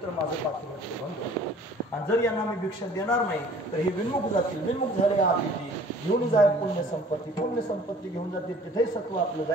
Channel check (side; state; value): both; normal; correlation 0.51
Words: तर माझं पातिव्रत्य भंग होईल. आणि जर यांना मी भिक्षा देणार नाही तर हे विन्मुख जातील. विन्मुख झाले आदिती घेऊन जाय पुण्य संपत्ती घेऊन जातील, तिथेही सत्व आपलं